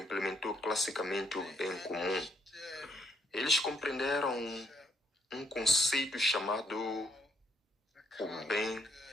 classicamente o bem comum. Eles compreenderam um conceito chamado o bem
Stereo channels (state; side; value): normal; both; correlation 0.72